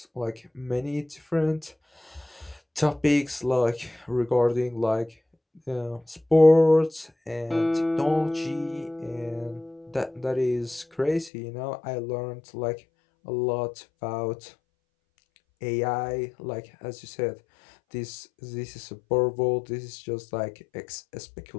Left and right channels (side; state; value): right; drops out; at 11.3 s